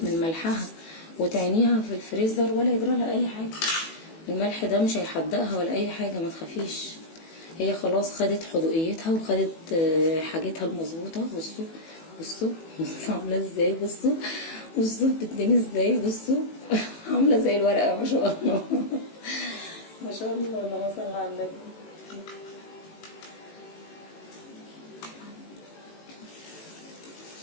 من ملحها وتعينيها في الفريزر ولا يجرى لها اي حاجه. الملح ده مش هيحدقها ولا اي حاجه ما تخافيش. هي خلاص خدت حدوقيتها وخدت حاجتها المظبوطه. بصوا عامله ازاي. بصوا بتديني ازاي. بصوا عامله زي الورقه ما شاء الله. ما شاء الله اللهم صل على النبي.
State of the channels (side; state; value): right; late; 18 ms